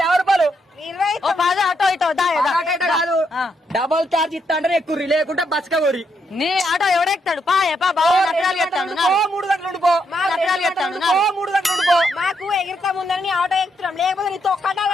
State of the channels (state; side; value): normal; both; correlation 0.78